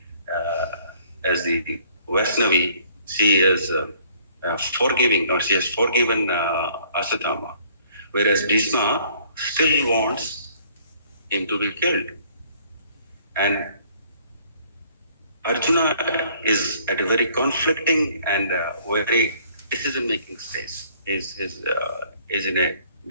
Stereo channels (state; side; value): inverted; both; correlation -0.59